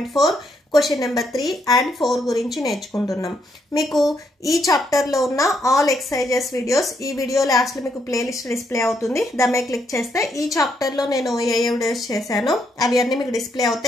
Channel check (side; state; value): both; normal; correlation 0.76